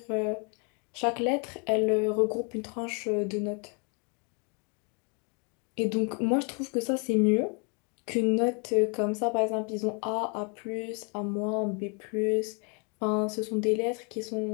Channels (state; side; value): quieter; right; 35.9 dB